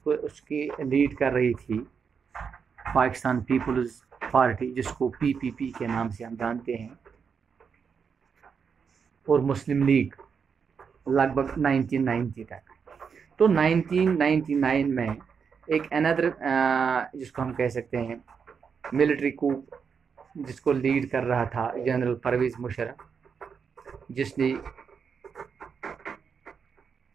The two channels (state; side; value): quieter; left; 6.3 dB